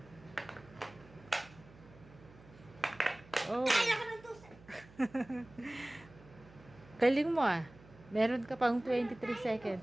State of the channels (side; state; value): right; noise; hum, 22 dB below the sound